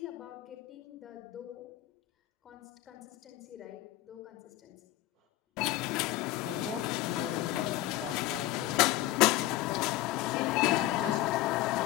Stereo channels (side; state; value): right; quieter; 15.9 dB